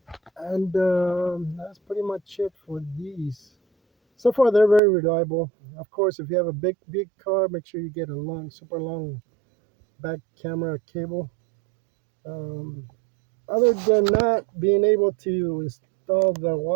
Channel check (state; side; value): drops out; left; at 4.8 s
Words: And that's pretty much it for these. So far, they're very reliable. Of course, if you have a big car, make sure you get a long, super long back camera cable. Um, Other than not being able to install the